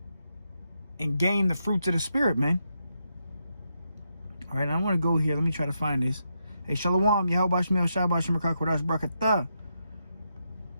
and gain the fruits of the spirit, man. All right, I want to go here. Let me try to find this. Hey, Shalom, Yahweh Bashmi Hawashai Bashmi Kodash Barakatah.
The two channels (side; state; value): both; inverted; correlation -0.82